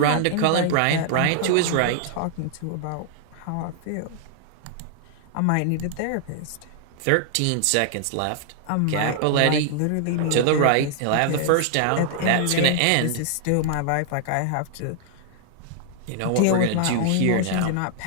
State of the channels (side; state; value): both; different; correlation 0.00